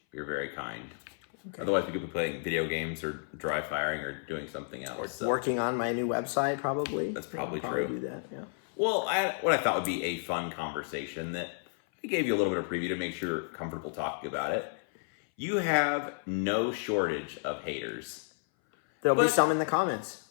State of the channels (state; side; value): silent; right; 57 dB below the other